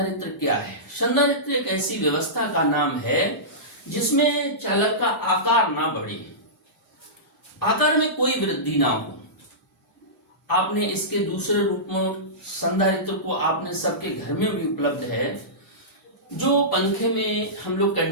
क्या है। संधारित्र एक ऐसी व्यवस्था का नाम है जिसमें चालक का आकार ना बढ़े, आकार में कोई वृद्धि ना हो। आपने इसके दूसरे रूप में संधारित्र को आपने सबके घर में भी उपलब्ध है, जो पंखे में हम लोग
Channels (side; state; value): both; normal; correlation -0.18